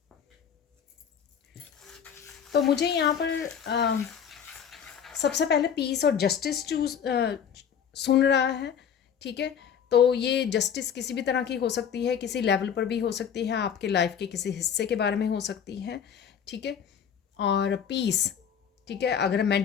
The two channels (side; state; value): right; quieter; 7.9 dB